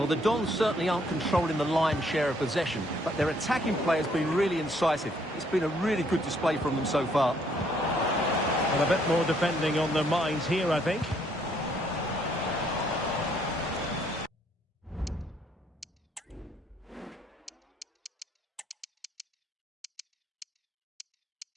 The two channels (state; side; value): normal; both; correlation 0.67